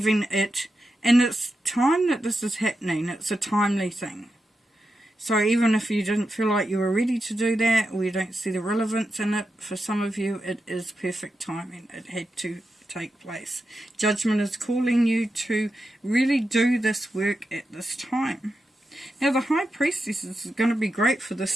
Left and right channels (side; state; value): both; normal; correlation 0.88